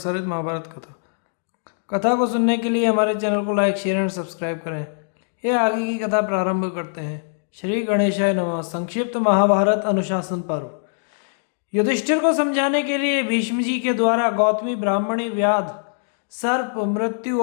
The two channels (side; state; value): right; silent; digital silence